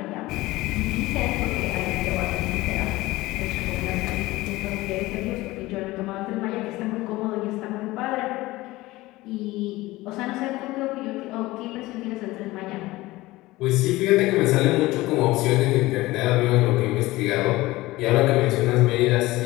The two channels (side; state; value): right; quieter; 19.0 dB